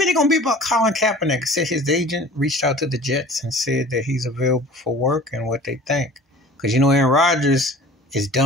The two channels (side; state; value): both; normal; correlation 0.44